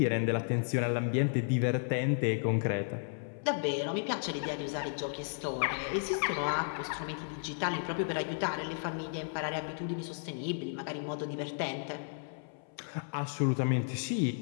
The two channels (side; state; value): right; silent; 55 dB below the other